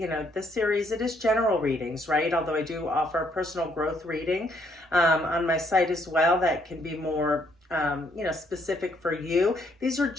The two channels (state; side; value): normal; both; correlation 0.70